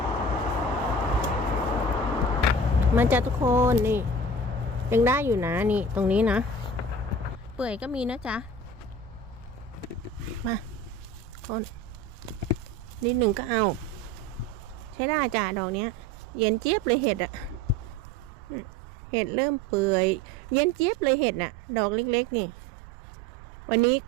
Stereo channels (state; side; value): noise; right; rumble, 18 dB below the sound